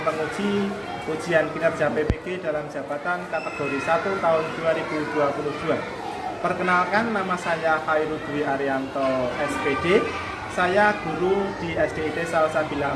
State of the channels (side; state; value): both; identical; correlation 1.00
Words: penguji ujian kinerja PPG dalam jabatan kategori 1 tahun 2022. Perkenalkan, nama saya Khairul Dwi Arianto SPD. Saya guru di SDIT